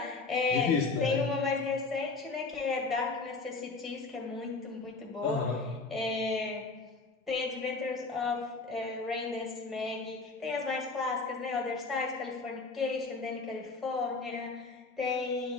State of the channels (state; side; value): quieter; right; 3.9 dB